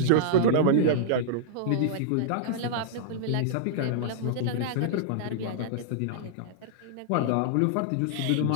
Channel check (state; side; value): different; both; correlation -0.02